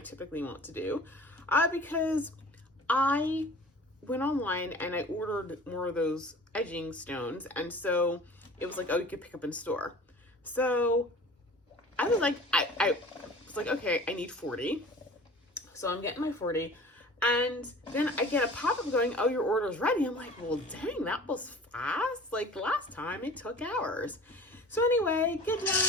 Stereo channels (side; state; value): both; normal; correlation 0.44